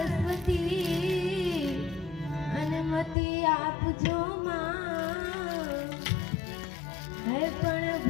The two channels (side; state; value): right; drops out; at 3.2 s